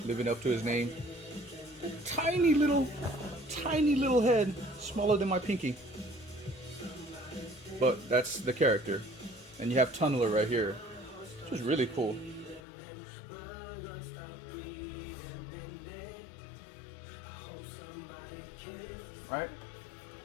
living up to his name. Tiny little head, smaller than my pinky. But that's the character. And you have Tunneler right here, which is really cool. Right?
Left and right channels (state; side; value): drops out; right; at 12.6 s